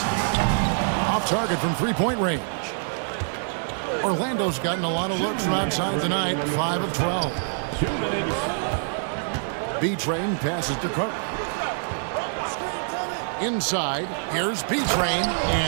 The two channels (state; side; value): silent; left; digital silence